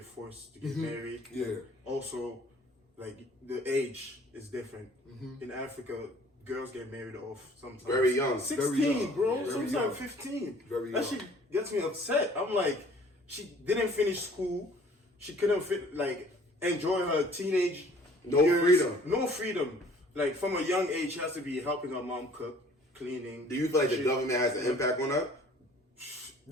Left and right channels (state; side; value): normal; both; correlation 0.54